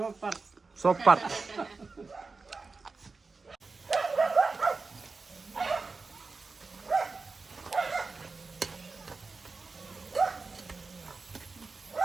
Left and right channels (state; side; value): quieter; left; 4.1 dB